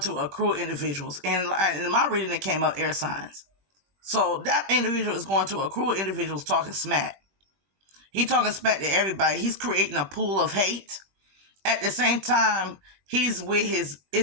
accrue individuals. And in my reading, it came up air signs. So that individual is going to accrue individuals talking smack. He talking smack to everybody. He's creating a pool of hate. At the same time, he's with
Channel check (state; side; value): late; left; 21 ms